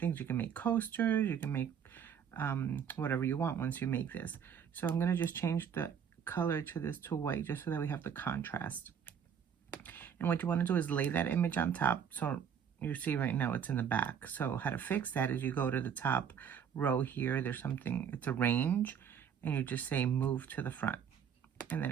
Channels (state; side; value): quieter; left; 7.9 dB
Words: You can make coasters, you can make whatever you want once you make this. So I'm going to just change the color to this to white just so that we have the contrast. And what you want to do is lay that image on top. So you see right now it's in the back. So how to fix that is you go to the top row here. There's something, it's a range, and you just say move to the front. And then